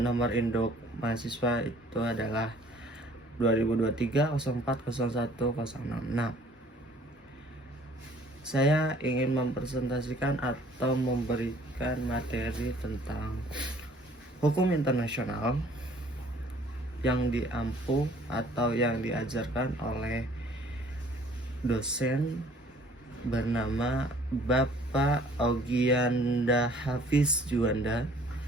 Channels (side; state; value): both; normal; correlation 0.56